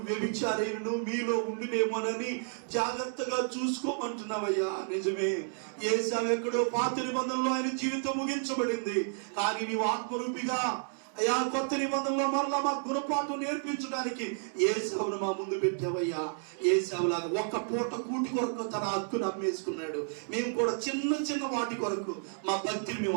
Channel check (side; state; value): left; silent; digital silence